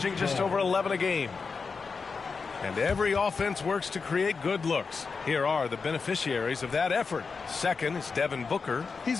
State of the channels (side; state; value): right; quieter; 4.9 dB